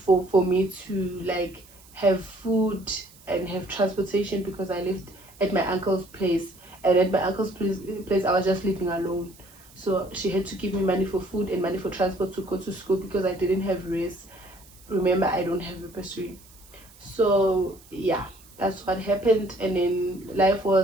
for me to like have food and have transportation, because I lived at my uncle's place, and at my uncle's place I was just living alone. So she had to give me money for food and money for transport to go to school, because I didn't have race. Remember, I don't have a bursary. So that's what happened. And then life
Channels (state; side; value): noise; right; hiss, 24 dB below the sound